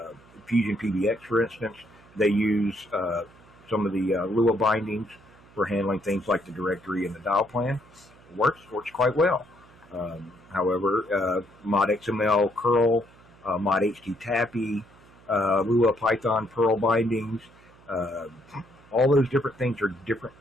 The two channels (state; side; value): noise; right; hum, 26 dB below the sound